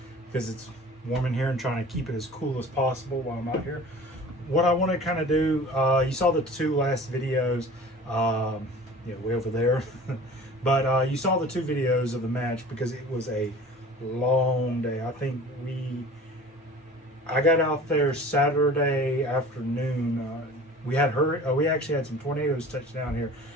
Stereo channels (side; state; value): both; normal; correlation 0.43